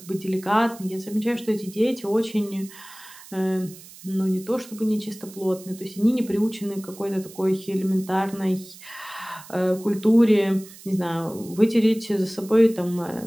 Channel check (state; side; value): noise; right; hiss, 19 dB below the sound